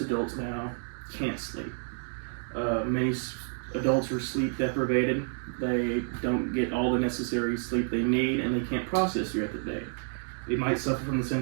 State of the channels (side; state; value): left; silent; digital silence